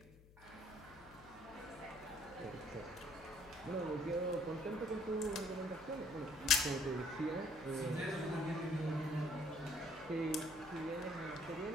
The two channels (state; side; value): noise; left; hum, 22 dB below the sound